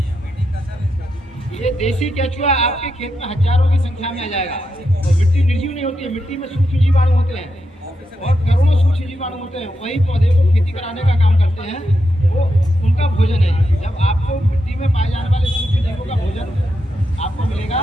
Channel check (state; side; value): normal; both; correlation 0.85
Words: ये देसी केचुआ आपके खेत में हजारों की संख्या में आ जाएगा। और मिट्टी निर्जीव नहीं होती है, मिट्टी में सूक्ष्म जीवाणु होते हैं और करोड़ों सूक्ष्म जीवाणु होते हैं। वही पौधे को खेती कराने का काम करते हैं, वो उनका भोजन है। जब आपको मिट्टी में पाए जाने वाले सूक्ष्म जीवों का भोजन आपको मिलेगा,